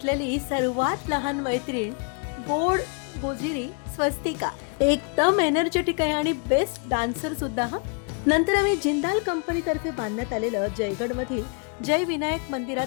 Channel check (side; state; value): right; quieter; 36.2 dB